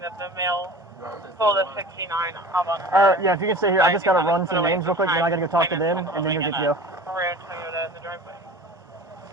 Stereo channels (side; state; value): both; normal; correlation 0.39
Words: the mail pulled a 69 up on her. Yeah, if you can stay here, I just gotta run some names real quick, then I gotta go talk to them, and then you'll get to go. Red Toyota in the driveway.